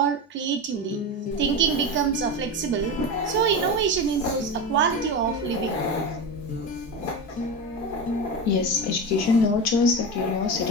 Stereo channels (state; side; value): normal; both; correlation 0.21